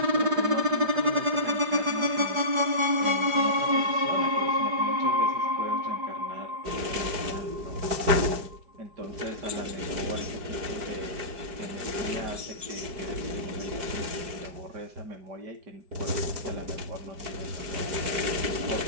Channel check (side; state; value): left; late; 5.0 ms